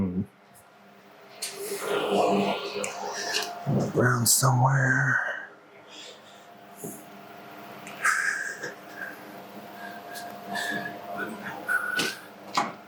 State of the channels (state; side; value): identical; both; correlation 1.00